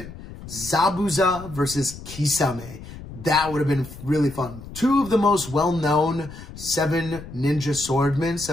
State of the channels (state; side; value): noise; left; rumble, 14 dB below the sound